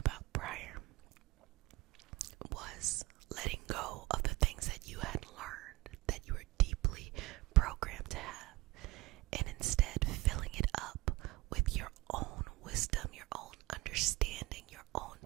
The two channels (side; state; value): left; quieter; 20.6 dB